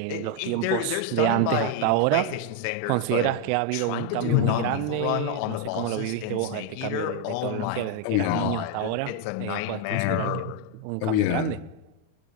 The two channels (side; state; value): both; different; correlation 0.01